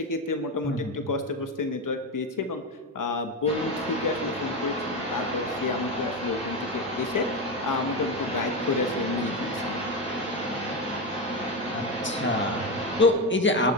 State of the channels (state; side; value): normal; both; correlation 0.14